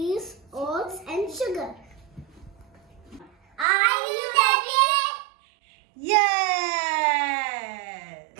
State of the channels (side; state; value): left; drops out; at 3.7 s